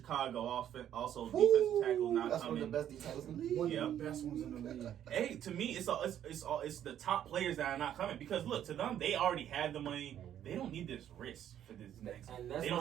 also defensive tackle, not that's coming. One of the best defensive tackles in the league. One of the best ones in the league. Hey, to me, it's the top players that are not coming because look, to them they already have the money. They don't need this risk for this next. They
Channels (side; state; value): left; quieter; 10.5 dB